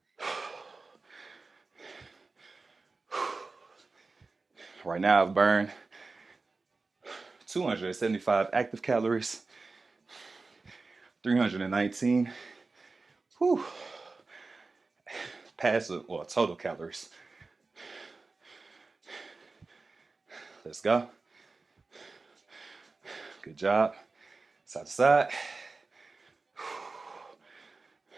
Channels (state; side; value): quieter; left; 3.8 dB